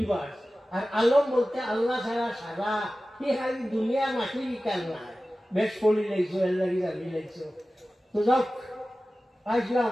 আর আলম বলতে আল্লাহ ছাড়া সারা কি খালি দুনিয়া মাটি কাল নাই। বেশ পড়ি লাইছো, এর লাগি জানি লাইছো। তো যাক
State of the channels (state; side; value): normal; both; correlation 0.96